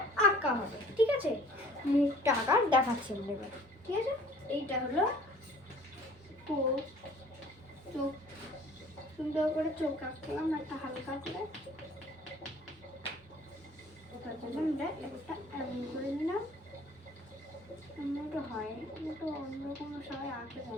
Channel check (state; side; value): normal; both; correlation 0.52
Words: আঁকা হবে। ঠিক আছে, মুখটা আঁকা দেখাচ্ছি আমরা এবার। ঠিক আছে, এইটা হলো চোখ, সুন্দর করে চোখ আঁকলাম একটা হালকা করে। ওটার জন্য আমরা একটা এমন করে নিলাম। এমনটা হয়, একটু অন্যরকম সবাই আঁকতে